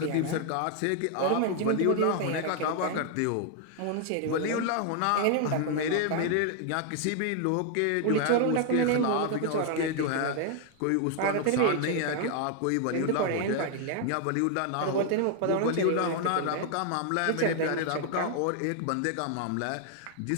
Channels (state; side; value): different; both; correlation 0.00